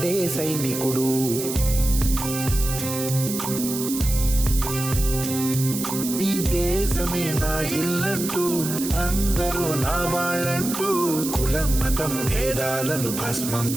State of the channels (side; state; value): right; noise; hiss, 6 dB below the sound